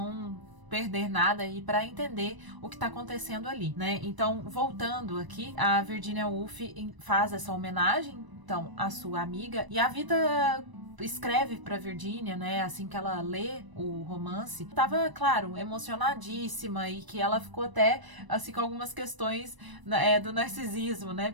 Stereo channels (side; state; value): left; late; 1.0 ms